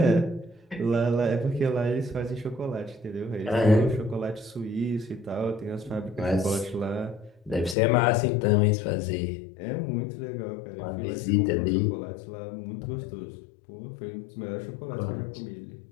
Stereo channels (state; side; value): drops out; right; at 7.8 s